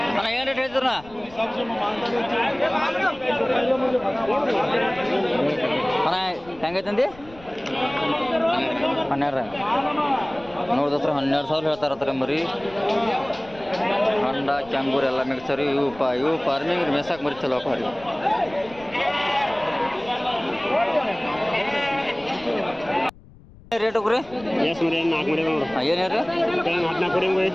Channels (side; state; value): left; noise; rumble, 22 dB below the sound